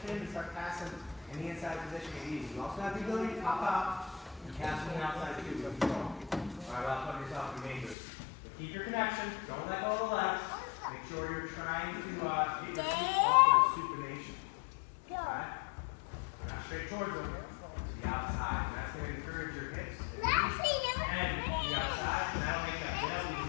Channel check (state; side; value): drops out; right; at 8.0 s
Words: in and start passing in the inside position is easy. You also have the ability to pop out and pass from the outside too. So control. Alright, well, put yourself in danger. But keep your connection. Don't let go of the legs. Make sure you're trying to get your feet off of supination. Alright? Not straight towards them. To the outside. And that's going to encourage your hips and the outside. And that'll make that